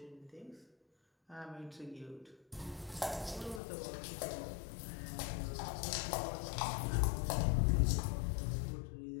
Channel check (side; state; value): right; drops out; at 3.6 s